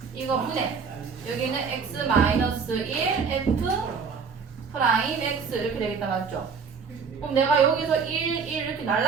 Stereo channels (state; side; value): quieter; left; 5.7 dB